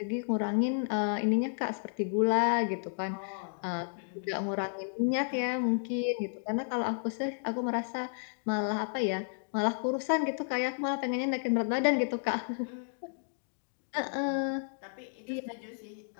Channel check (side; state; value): right; silent; digital silence